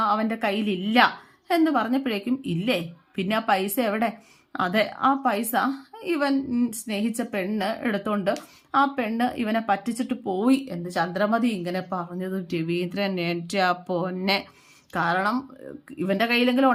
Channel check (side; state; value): both; identical; correlation 1.00